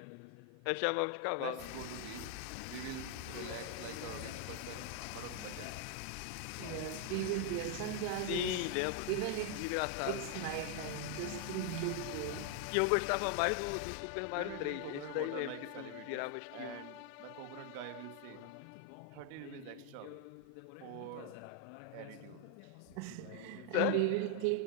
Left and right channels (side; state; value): both; different; correlation 0.00